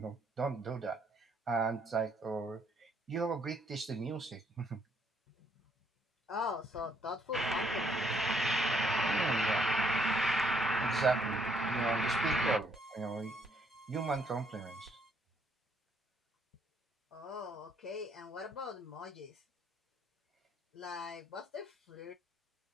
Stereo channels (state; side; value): normal; both; correlation 0.69